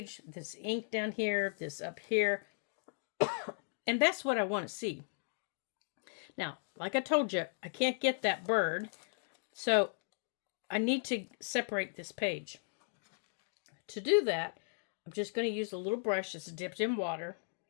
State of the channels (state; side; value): silent; right; digital silence